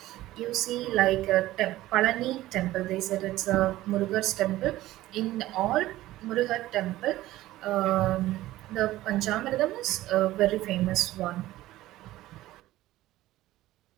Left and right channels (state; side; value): quieter; left; 16.0 dB